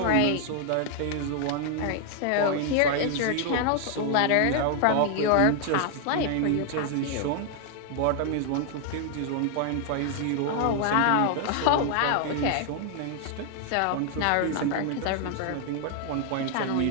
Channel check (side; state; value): both; different; correlation 0.00